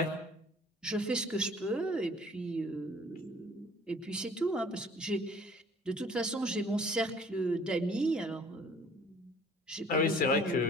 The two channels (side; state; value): both; normal; correlation 0.53